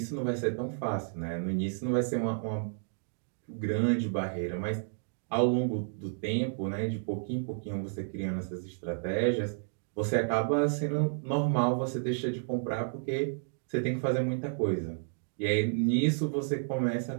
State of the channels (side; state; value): left; silent; digital silence